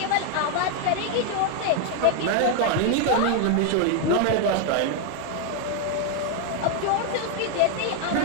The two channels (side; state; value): both; different; correlation 0.00